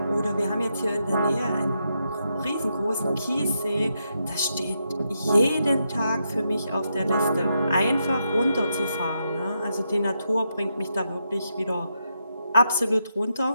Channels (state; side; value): inverted; both; correlation -0.82